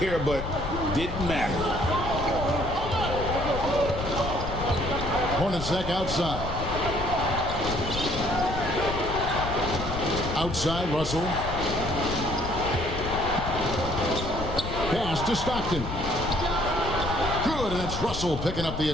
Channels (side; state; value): left; noise; rumble, 6 dB below the sound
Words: but didn't matter. Hornacek outside. Outside, Russell. Pass to Stockton. Good, and it's Russell picking up the